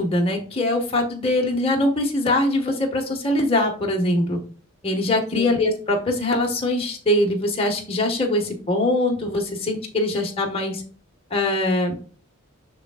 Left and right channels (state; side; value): normal; both; correlation 0.34